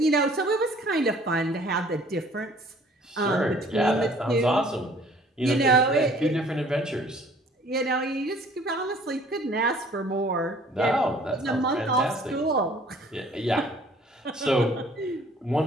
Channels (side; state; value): both; normal; correlation 0.55